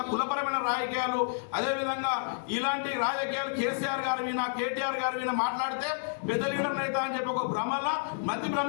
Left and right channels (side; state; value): right; silent; digital silence